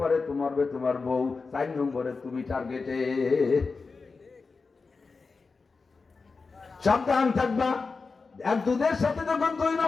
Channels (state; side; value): quieter; right; 4.4 dB